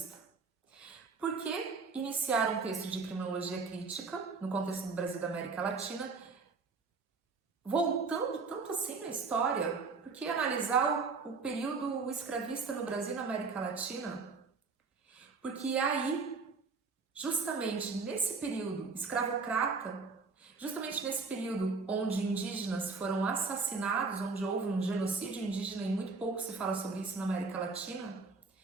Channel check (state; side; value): quieter; left; 4.5 dB